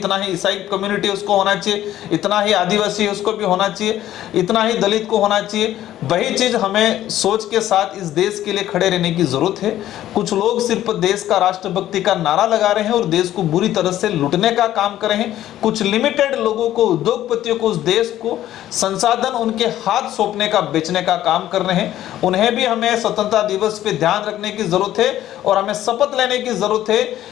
ही ईसाई कम्युनिटी उसको होना चाहिए, इतना ही आदिवासी है उसको भी होना चाहिए, इतना ही दलित को होना चाहिए। वही चीज़ हमें सोच के साथ इस देश के लिए खड़े रहने की ज़रूरत है। कुछ लोग सिर्फ देश का राष्ट्रभक्ति का नारा लगा रहे हैं और देश को बुरी तरह से लूटने का काम कर रहे हैं। कुछ लिमिटेड लोगों को, उद्योगपतियों को, उस देश को संसाधन उनके हाथ सौंपने का, बेचने का काम कर रहे हैं। उन्हें भी हमें स्वतंत्रता दिवस पे ध्यान रखने की जरूरत है और हमें शपथ लेने की जरूरत है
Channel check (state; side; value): quieter; right; 12.9 dB